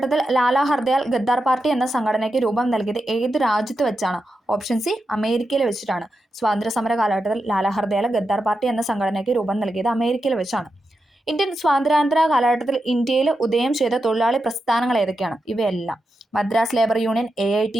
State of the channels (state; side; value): normal; both; correlation 0.88